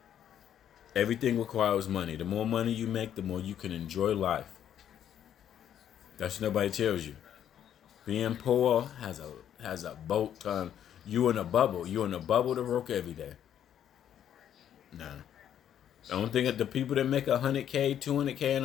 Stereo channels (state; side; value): quieter; right; 10.0 dB